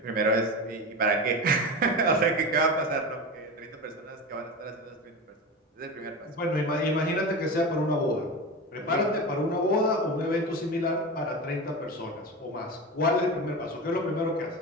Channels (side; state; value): both; normal; correlation 0.25